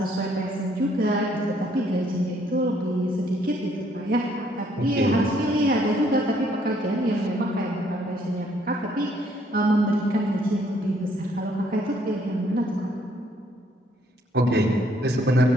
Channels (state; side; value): normal; both; correlation 0.66